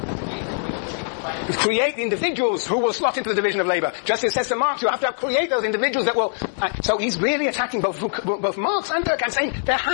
create the individuals who will slot into the division of labor. Just as it says to Marx, you have to create those individuals that will... so he's really attacking both Marx and Durkheim, saying there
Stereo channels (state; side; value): silent; right; digital silence